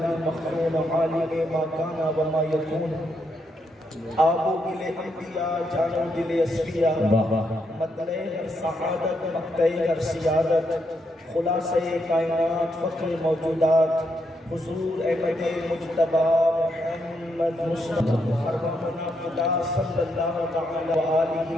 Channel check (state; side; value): normal; both; correlation 0.79